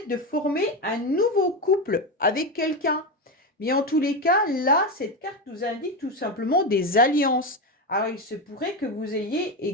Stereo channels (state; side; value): normal; both; correlation 0.15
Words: de former un nouveau couple avec quelqu'un. Mais en tous les cas, là, cette carte nous indique tout simplement des alliances. Alors, il se pourrait que vous ayez